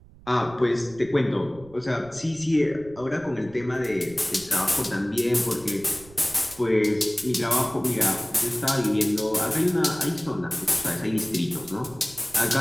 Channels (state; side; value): noise; right; rumble, 22 dB below the sound